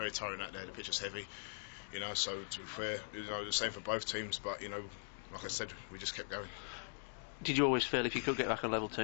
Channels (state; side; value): silent; right; digital silence